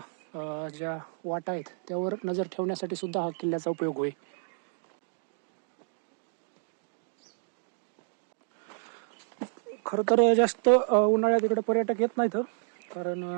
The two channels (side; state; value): left; silent; digital silence